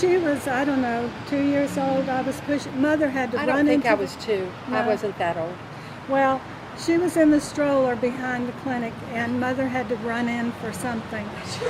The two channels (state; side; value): identical; both; correlation 1.00